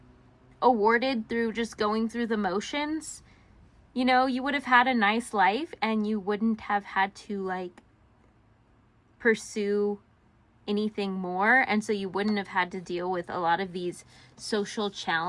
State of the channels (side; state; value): both; identical; correlation 1.00